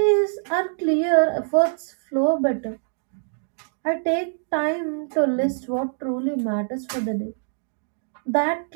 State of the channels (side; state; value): left; silent; digital silence